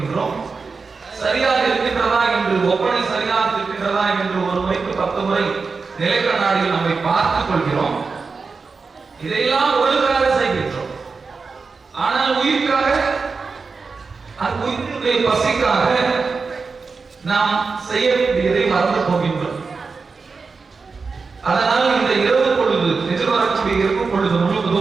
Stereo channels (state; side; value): quieter; left; 4.6 dB